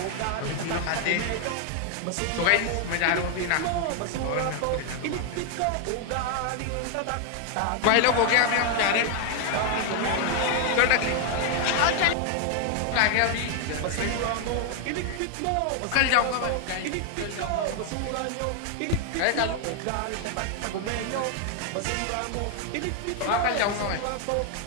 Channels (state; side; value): different; both; correlation 0.00